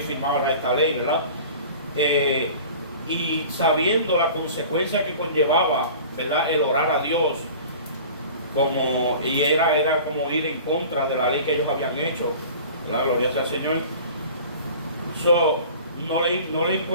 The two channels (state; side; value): inverted; both; correlation -0.42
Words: firmara esta ley, ¿verdad? Y sabiendo la consecuencia que conllevaba, ¿verdad? El orar a Dios, y era como ir en contra de la ley que ellos habían hecho, ¿verdad? Gloria sea al Señor. No le